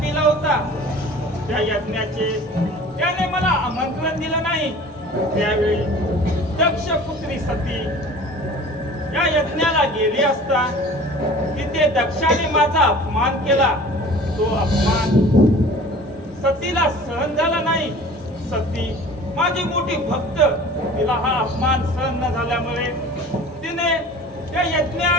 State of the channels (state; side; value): normal; both; correlation 0.44